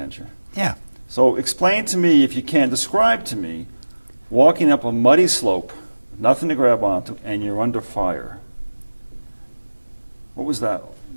Yeah. So explain to me, if you can, describe to me walking up a muddy slope, nothing to grab onto, and you're under fire. What was that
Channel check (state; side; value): inverted; both; correlation -1.00